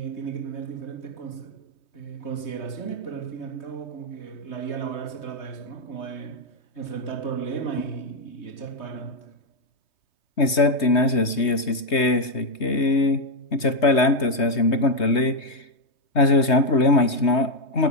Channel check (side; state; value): right; late; 3.2 ms